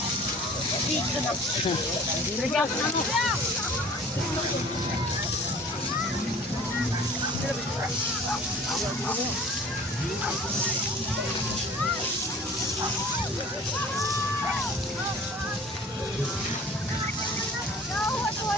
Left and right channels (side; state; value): both; normal; correlation 0.46